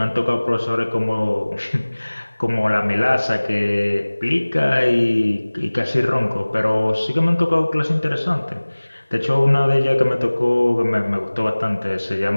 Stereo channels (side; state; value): both; inverted; correlation -1.00